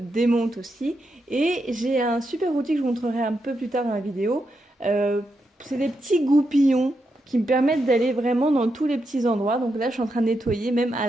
aussi. Et j'ai un super outil que je vous montrerai un peu plus tard dans la vidéo. C'est des petits goupillons qui me permettent d'aller vraiment dans tous les petits endroits. Donc là, je suis en train de nettoyer, même à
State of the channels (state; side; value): normal; both; correlation 0.84